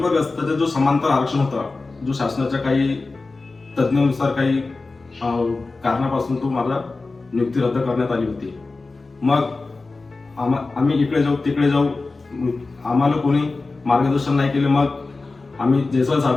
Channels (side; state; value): right; quieter; 3.6 dB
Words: जो समांतर आरक्षण होता, जो शासनाच्या काही तज्ञानुसार काही कारणापासून तो मला नियुक्ती रद्द करण्यात आली होती. मग आम्ही इकडे जाऊ तिकडे जाऊ, आम्हाला कोणी मार्गदर्शन नाही केले. मग आम्ही जयस्वाल